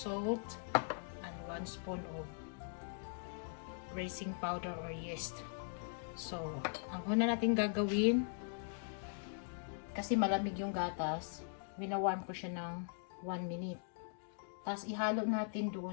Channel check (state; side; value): silent; right; digital silence